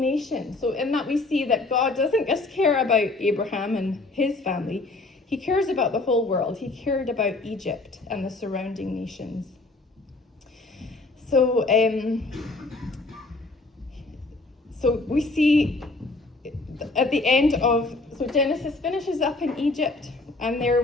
So in that we see that God doesn't just care about Abraham and his family. He cares about the whole world. He cared about Egypt and the surrounding nations. So we see at the end of, so Genesis finishes up in Egypt, and there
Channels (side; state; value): right; quieter; 3.2 dB